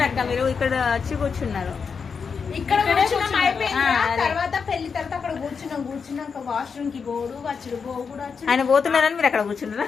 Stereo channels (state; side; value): quieter; right; 5.8 dB